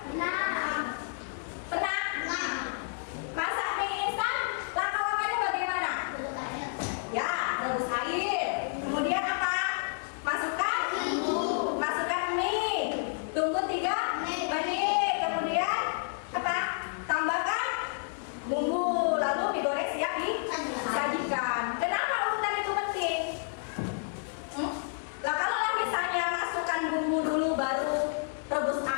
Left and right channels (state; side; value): silent; right; 58 dB below the other